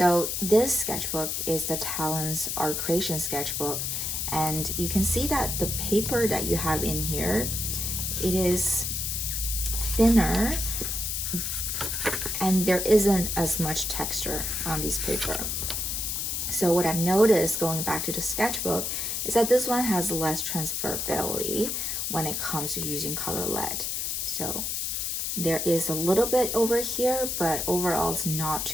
this sketchbook is the Talens Art Creation sketchbook, and you can see that the paper that you have in here, it is thinner and there isn't as much texture on this paper. So what I've noticed going back to the sketchbook is that this one has less transferability when it comes to using color lead. So there is a little bit over here, but overall it's not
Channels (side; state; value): left; noise; hiss, 1 dB below the sound